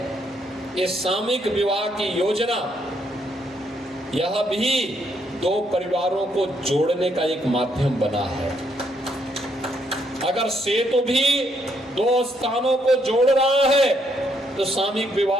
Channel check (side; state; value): both; normal; correlation 0.73